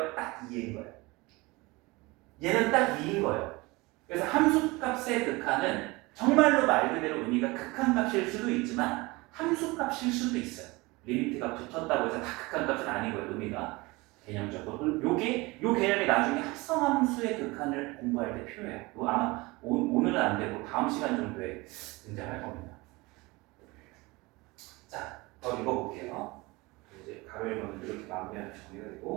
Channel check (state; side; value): quieter; left; 23.3 dB